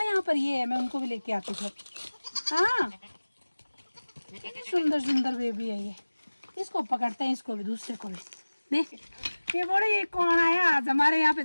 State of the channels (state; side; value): inverted; both; correlation -1.00